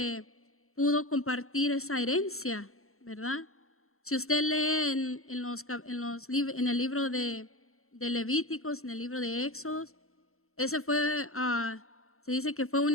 pudo compartir esa herencia, ¿verdad? Si usted lee en el libro de Levíticos, en el libro de Éxodos, ese fue, se dice que fue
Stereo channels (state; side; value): late; right; 0.63 ms